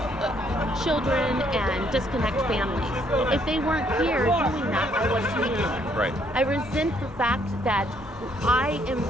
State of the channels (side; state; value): both; normal; correlation 0.68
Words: children and disconnect families. If they weren't here doing that, I wouldn't be here. Right. I resent the fact that I am